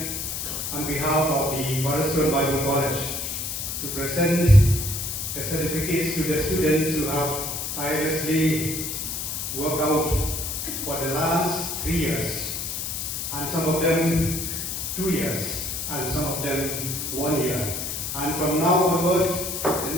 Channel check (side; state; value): left; noise; hiss, 4 dB below the sound